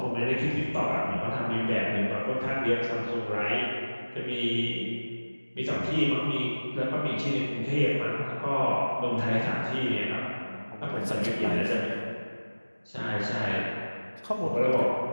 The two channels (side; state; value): both; inverted; correlation -1.00